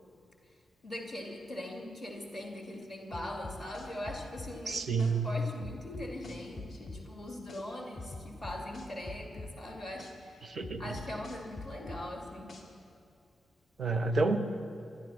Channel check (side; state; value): both; normal; correlation 0.80